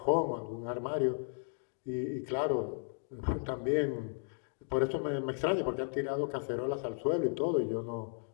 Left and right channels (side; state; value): right; silent; digital silence